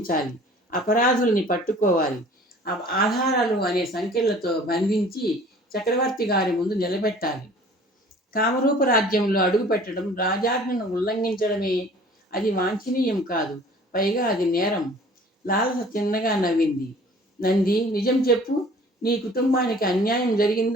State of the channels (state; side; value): normal; both; correlation 0.50